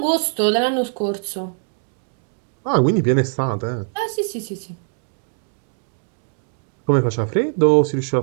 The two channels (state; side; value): silent; left; 55 dB below the other